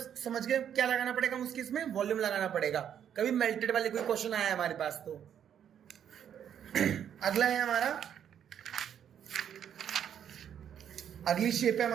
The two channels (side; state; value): left; quieter; 9.1 dB